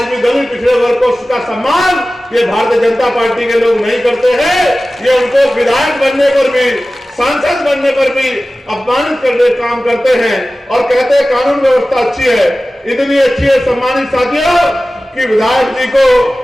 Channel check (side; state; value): both; normal; correlation 0.96